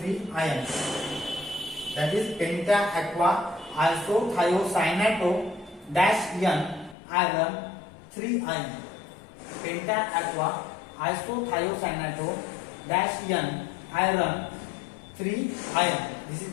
ion, that is penta aqua isothiocyanato dash N iron 3 ion. Penta aqua isothiocyanato dash N iron 3 iron. This is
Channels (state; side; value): drops out; right; at 7.0 s